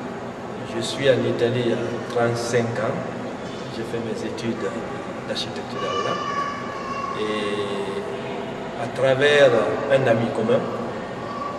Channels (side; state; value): both; identical; correlation 1.00